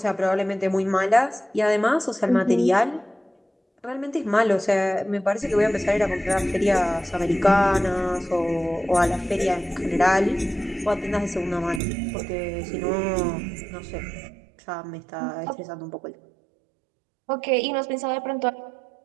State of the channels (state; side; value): drops out; left; at 11.8 s